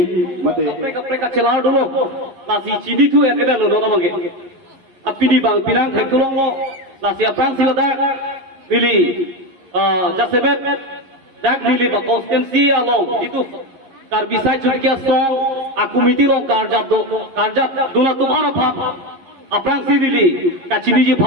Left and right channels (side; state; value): left; late; 11 ms